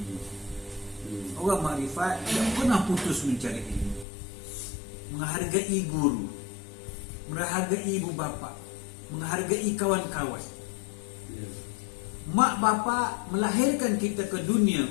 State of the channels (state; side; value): drops out; right; at 4.0 s